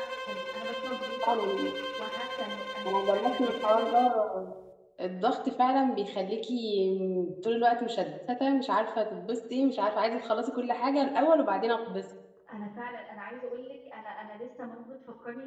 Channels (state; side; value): identical; both; correlation 1.00